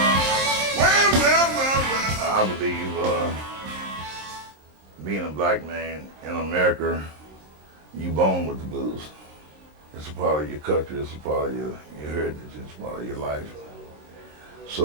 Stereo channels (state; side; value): late; left; 26 ms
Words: Well. I believe being a black man in America, you born with the blues. It's a part of your culture, it's a part of your heritage, it's a part of your life.